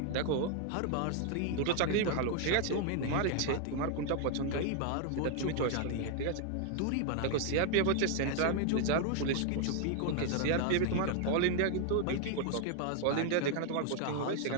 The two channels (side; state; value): both; different; correlation 0.00